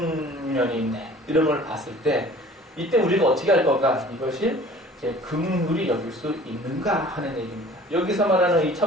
면이 있네, 이런 걸 봤을 때 이때 우리가 어떻게 할 건가? 이것이 이제 긍휼히 여길 수 있는가 하는 얘기입니다. 여기서 말하는 이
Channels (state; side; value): normal; both; correlation 0.48